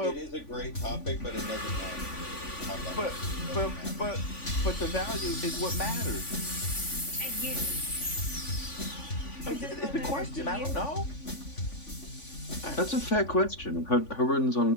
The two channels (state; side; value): late; right; 3.5 ms